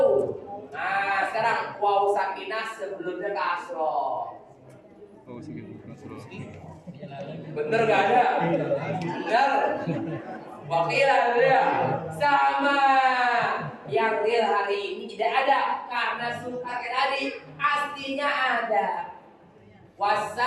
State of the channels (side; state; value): both; identical; correlation 1.00